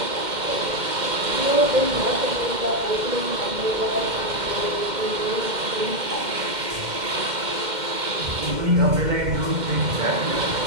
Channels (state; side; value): late; left; 2.1 ms